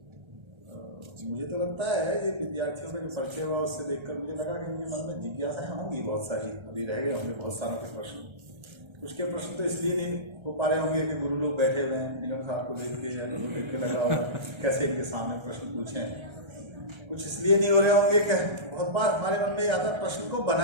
मुझे तो लगता है ये विद्यार्थियों का जो परिचय हुआ उससे देखकर मुझे लगा कि उनके मन में जिज्ञासाएं होंगी बहुत सारी, अभी रह गए होंगे बहुत सारों के प्रश्न। कुछ के प्रश्न तो इसलिए नहीं हो पा रहे होंगे कि गुरु लोग बैठे हुए हैं, निगम साहब को देख के या देख के लग रहा होगा कैसे इनके सामने प्रश्न पूछें। कुछ इसलिए नहीं हो रहे होंगे कि बहुत बार हमारे मन में आता प्रश्न को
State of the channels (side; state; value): left; late; 1.3 ms